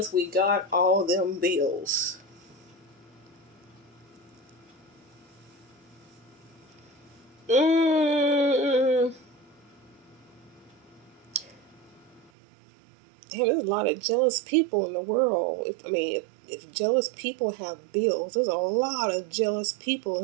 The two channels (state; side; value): drops out; left; at 12.3 s